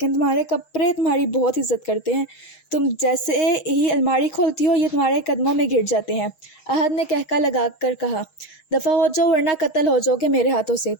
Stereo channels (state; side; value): late; right; 6.4 ms